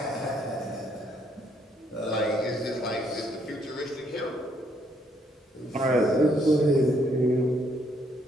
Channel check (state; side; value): normal; both; correlation 0.70